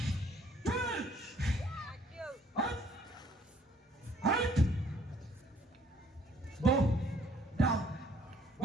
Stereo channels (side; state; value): both; normal; correlation 0.61